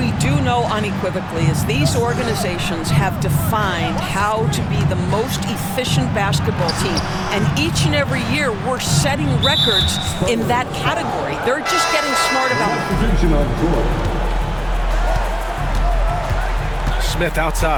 do know unequivocally is these organizations have defined how to be the most efficient basketball team. And each and every year, we're setting records in that category. They're just getting smart about it. Smith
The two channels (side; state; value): both; identical; correlation 1.00